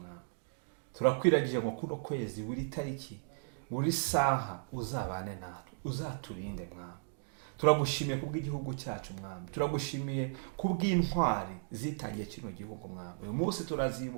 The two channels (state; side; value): silent; left; digital silence